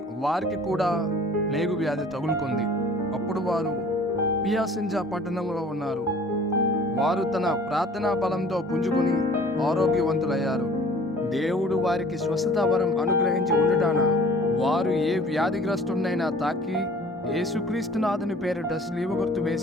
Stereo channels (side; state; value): both; normal; correlation 0.49